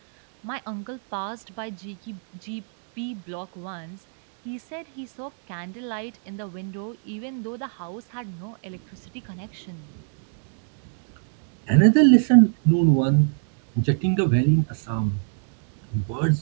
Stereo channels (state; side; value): silent; left; digital silence